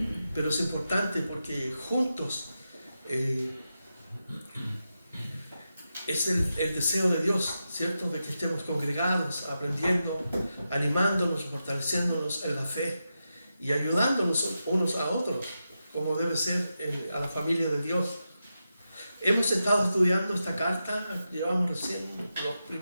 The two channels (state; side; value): inverted; both; correlation -0.89